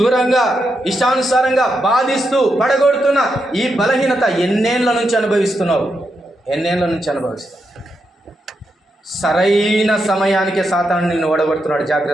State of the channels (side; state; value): both; normal; correlation 0.84